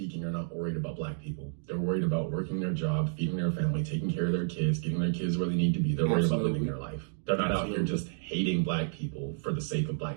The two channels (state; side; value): silent; left; digital silence